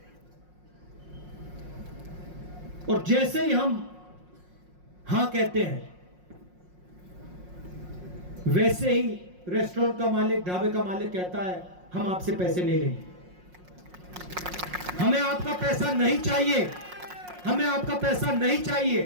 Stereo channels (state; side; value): late; left; 5.5 ms